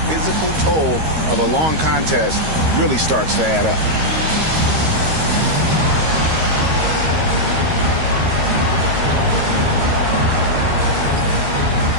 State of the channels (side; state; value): left; late; 13 ms